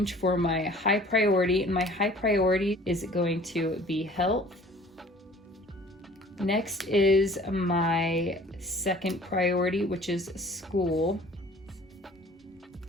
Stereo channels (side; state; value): both; normal; correlation 0.50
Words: for my high priority, and my high priority is going to be health. Next is my second priority, which is school.